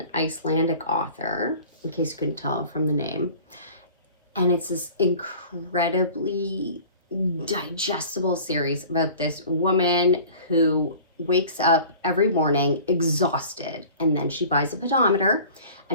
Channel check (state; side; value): inverted; both; correlation -0.44